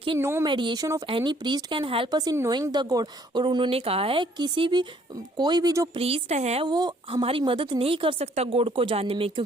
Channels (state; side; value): normal; both; correlation 0.63